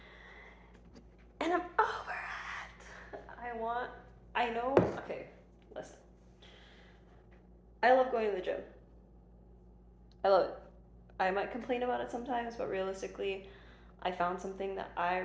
and I'm over it. I know, okay, listen. I love going to the gym. I love it. I might complain about it sometimes, but realistically, I found something that I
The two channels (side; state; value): both; identical; correlation 1.00